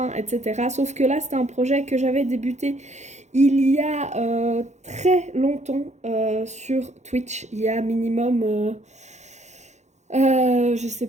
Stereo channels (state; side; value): late; left; 0.33 ms